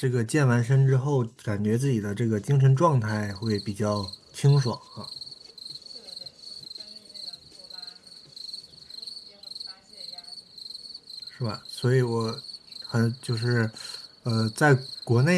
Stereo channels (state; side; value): identical; both; correlation 1.00